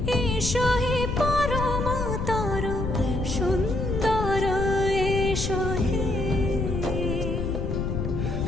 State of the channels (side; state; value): left; noise; rumble, 2 dB below the sound